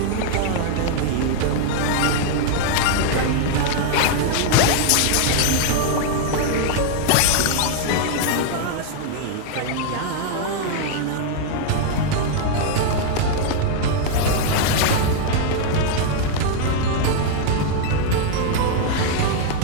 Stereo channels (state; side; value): different; both; correlation 0.00